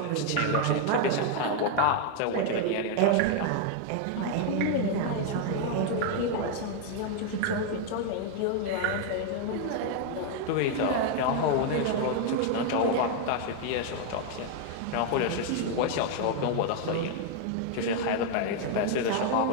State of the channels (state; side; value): different; both; correlation 0.00